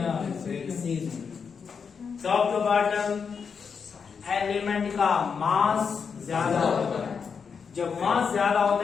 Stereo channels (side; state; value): right; quieter; 6.1 dB